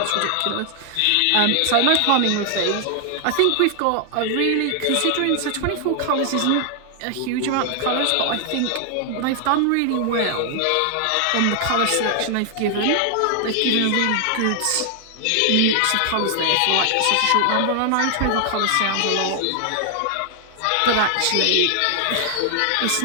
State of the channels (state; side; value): different; both; correlation 0.00